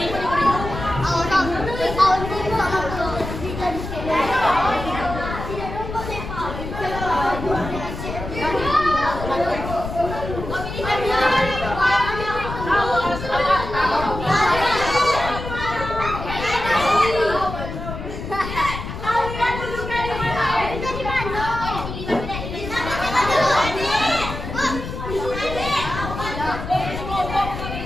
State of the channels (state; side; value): noise; left; rumble, 7 dB below the sound